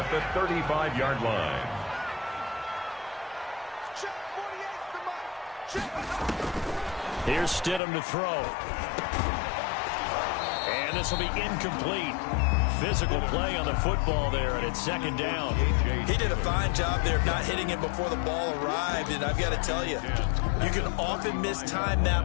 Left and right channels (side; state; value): right; drops out; at 7.8 s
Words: the 35-yard line. Here's Stidham to throw. And this will be incomplete. Physical play on the football there, and it's second down. He did a fine job there of not hitting it before the ball arrived, and I've got to tell you, you can often mistime